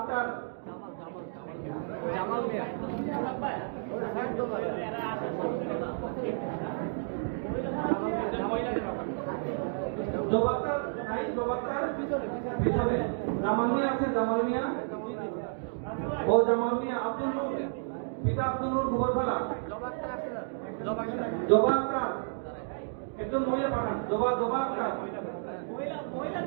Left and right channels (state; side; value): silent; left; digital silence